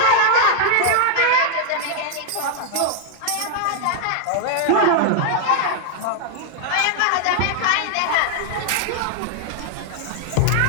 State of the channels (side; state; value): both; different; correlation -0.01